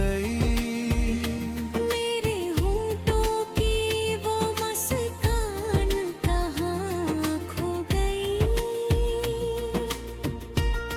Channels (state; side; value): identical; both; correlation 1.00